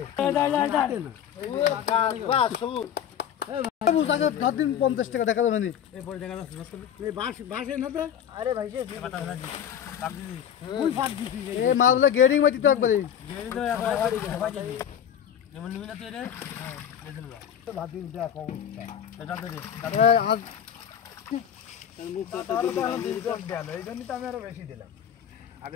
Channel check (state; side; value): quieter; right; 9.1 dB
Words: দিন 50 টাকা দেখা যাবে মাছগুলো গেডিং মাটি তো একবারে এই জন্যই তো আমি আরো বেশি দিলাম